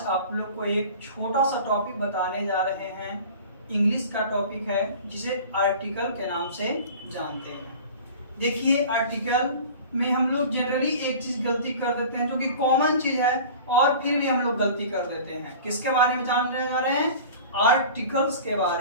आप लोग को एक छोटा सा टॉपिक बताने जा रहे हैं। इंग्लिश का टॉपिक है जिसे आर्टिकल के नाम से जानते हैं। देखिए, आर्टिकल में हम लोग जनरली एक चीज गलती कर देते हैं जो कि कॉमन चीज है, और फिर भी हम लोग गलती कर देते हैं। किसके बारे में जानने जा रहे हैं? आर्टिकल्स के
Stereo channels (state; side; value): inverted; both; correlation -0.40